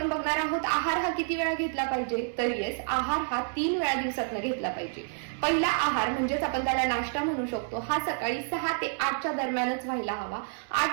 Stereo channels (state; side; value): silent; left; 56 dB below the other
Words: बघणार आहोत आहार हा किती वेळा घेतला पाहिजे. तर येस, आहार हा 3 वेळा दिवसातनं घेतला पाहिजे. पहिला आहार म्हणजेच आपण त्याला नाश्ता म्हणू शकतो, हा सकाळी 6 ते 8च्या दरम्यानच व्हायला हवा.